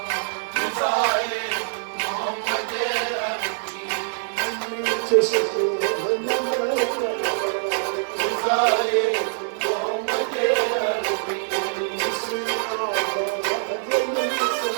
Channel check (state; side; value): silent; left; 56 dB below the other